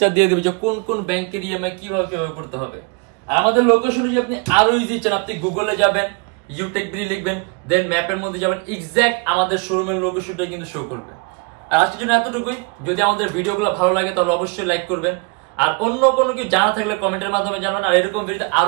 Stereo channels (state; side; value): quieter; left; 32.2 dB